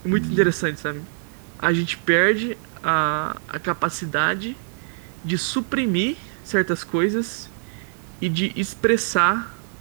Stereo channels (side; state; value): left; silent; digital silence